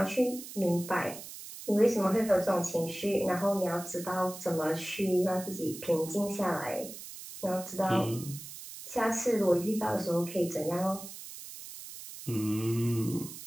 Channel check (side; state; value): right; noise; hiss, 12 dB below the sound